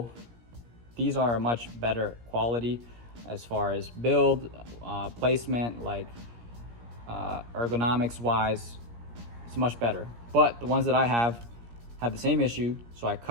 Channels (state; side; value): late; left; 17 ms